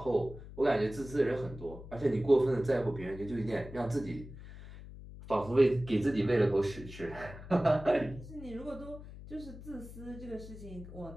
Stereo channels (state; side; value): noise; left; hum, 14 dB below the sound